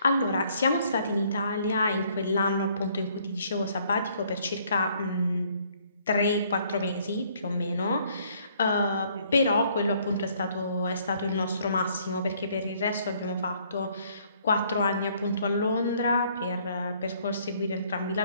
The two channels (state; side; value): inverted; both; correlation -0.64